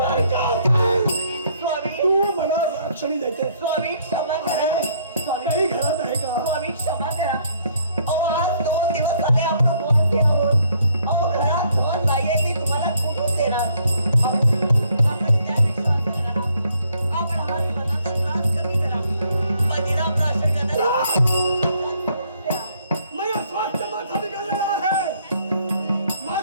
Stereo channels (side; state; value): both; inverted; correlation -0.67